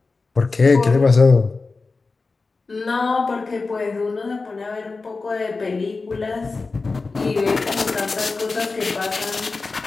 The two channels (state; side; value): quieter; right; 4.0 dB